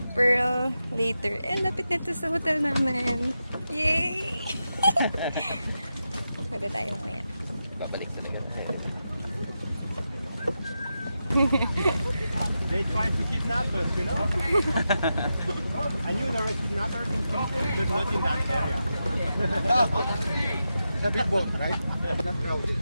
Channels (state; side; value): inverted; both; correlation -0.89